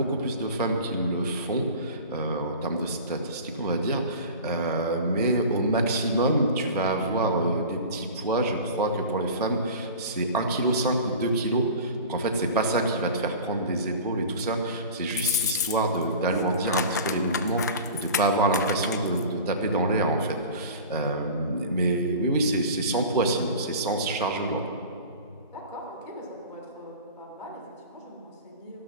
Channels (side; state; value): both; inverted; correlation -0.37